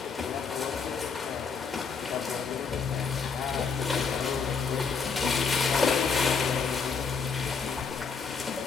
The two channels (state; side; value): quieter; right; 5.5 dB